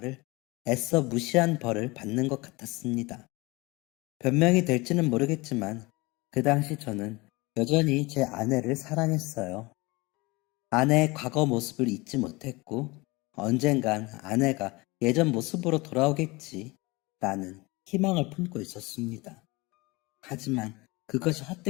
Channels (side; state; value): right; quieter; 23.8 dB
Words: 애써 무시한 벌을 받는 것 같았습니다. 변명이 될지는 모르겠지만 그 당시 저는 여전히 제 아내를 사랑했어요. 아내의 과거 모습을 잊지 못했고 언젠간 아내가 예전 모습으로 돌아오겠지 라는 희망을 품고 있었습니다. 하지만 그것이